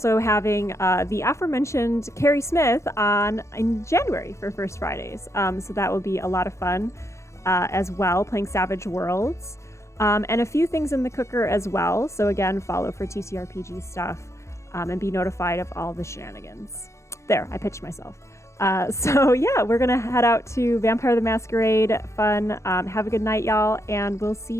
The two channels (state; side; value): late; right; 0.14 ms